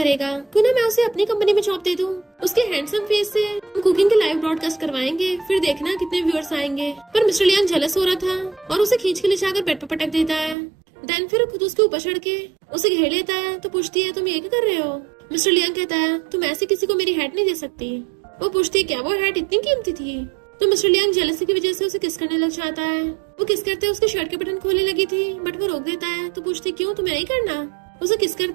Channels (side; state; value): left; drops out; at 10.6 s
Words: क्यों ना मैं उसे अपनी कंपनी में जॉब दे दूं। उसके हैंडसम फेस से हम कुकिंग के लाइव ब्रॉडकास्ट करवाएंगे, फिर देखना कितने व्यूअर्स आएंगे। पर मिस्टर लियांग जेलस हो रहा था और उसे खींच के ले जाकर बेड पर पटक देता है। देन फिर खुद उसके ऊपर चढ़ के उसे घेर लेता है तो पूछती है तुम ये क्या कर रहे हो? मिस्टर लियांग कहता है तुम ऐसे किसी को मेरी हैट नहीं दे सकती। वो पूछती है क्या वो हैट इतनी कीमती थी? तो मिस्टर लियांग जेलसी की वजह से उसे किस करने लग जाता है। वो किस करते उसके शर्ट के बटन खोलने लगी थी बट वो रोक देता है तो पूछती क्यों तुम्हें नहीं करना? उसे किस